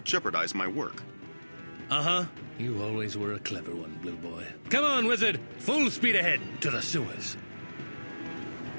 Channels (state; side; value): inverted; both; correlation -1.00